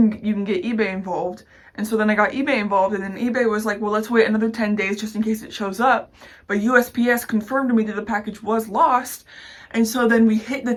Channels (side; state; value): both; identical; correlation 1.00